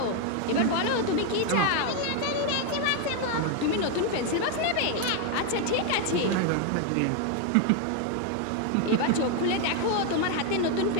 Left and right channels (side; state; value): both; different; correlation 0.01